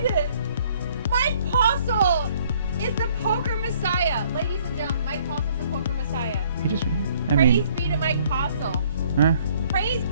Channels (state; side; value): inverted; both; correlation -0.61